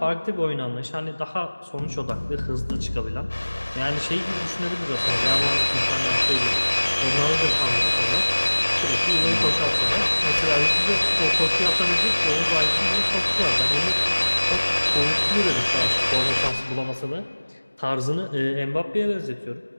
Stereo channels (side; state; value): both; inverted; correlation -1.00